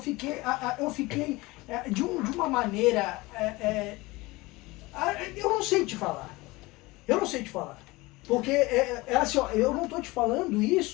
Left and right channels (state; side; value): quieter; right; 21.9 dB